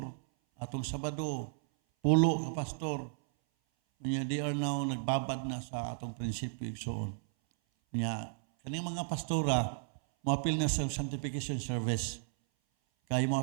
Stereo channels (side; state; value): left; silent; 55 dB below the other